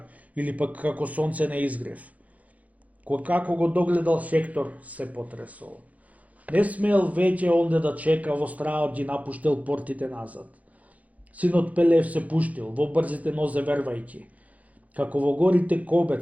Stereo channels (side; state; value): left; late; 0.072 ms